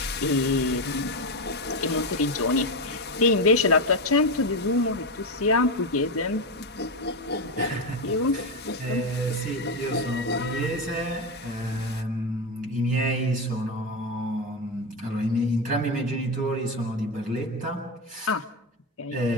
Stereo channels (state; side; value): normal; both; correlation 0.12